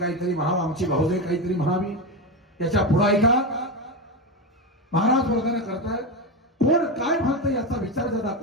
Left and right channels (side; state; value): both; normal; correlation 0.15